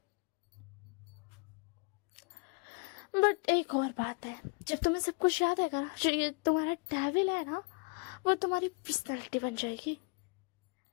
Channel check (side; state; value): right; quieter; 31.9 dB